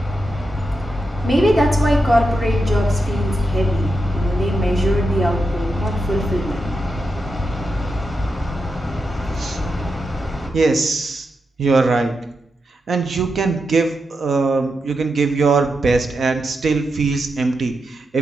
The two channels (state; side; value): normal; both; correlation 0.87